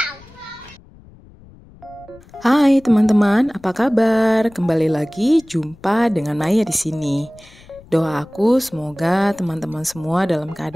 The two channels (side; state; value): left; noise; rumble, 24 dB below the sound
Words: Hai teman-teman, apa kabar? Kembali lagi jumpa dengan Naya di sini. Doa aku semoga teman-teman semua dalam